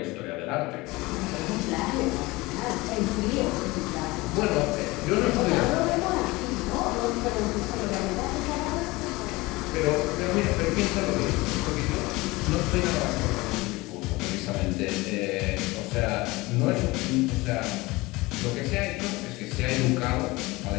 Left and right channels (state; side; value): quieter; right; 21.8 dB